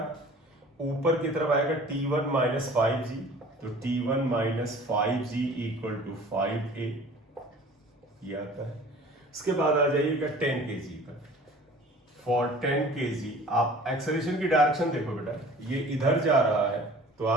ऊपर की तरफ आएगा T1 माइनस 5g, तो T1 minus 5g equal to 5a, ये आता है। उसके बाद आ जाइएगा 10 kg का, फॉर 10 kg आप एक्सेलरेशन की डायरेक्शन देखो बेटा, ये इधर जा रहा है, तो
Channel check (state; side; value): normal; both; correlation 0.46